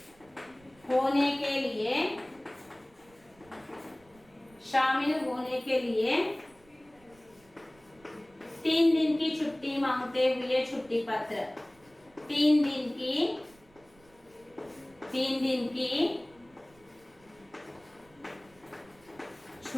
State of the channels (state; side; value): noise; right; rumble, 29 dB below the sound